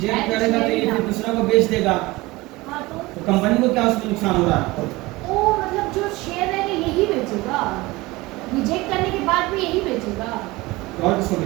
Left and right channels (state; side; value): quieter; left; 21.1 dB